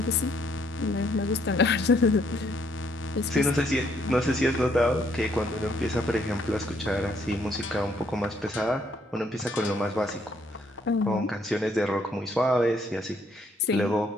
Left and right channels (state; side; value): normal; both; correlation 0.69